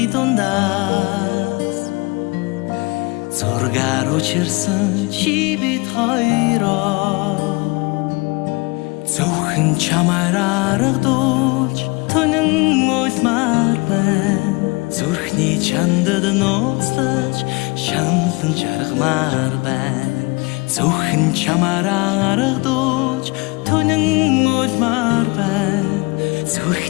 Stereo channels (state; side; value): quieter; right; 26.2 dB